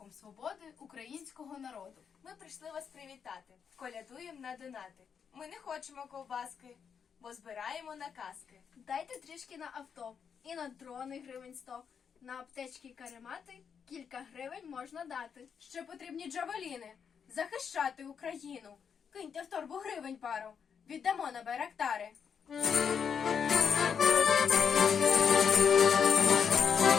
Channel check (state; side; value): quieter; right; 7.0 dB